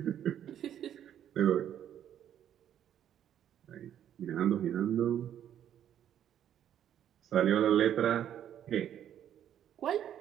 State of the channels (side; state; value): left; quieter; 10.3 dB